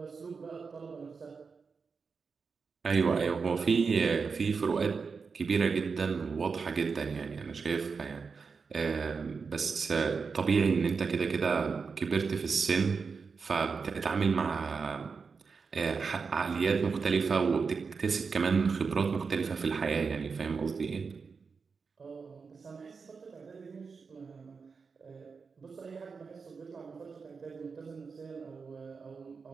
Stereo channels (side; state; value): left; quieter; 5.1 dB